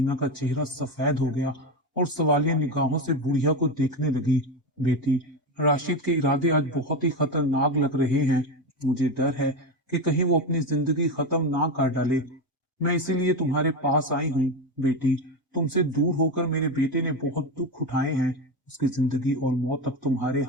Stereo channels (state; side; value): normal; both; correlation 0.16